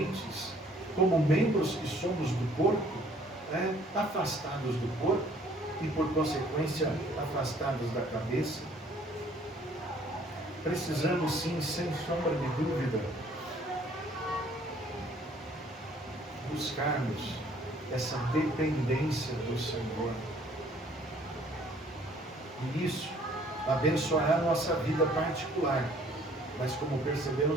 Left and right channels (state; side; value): normal; both; correlation 0.59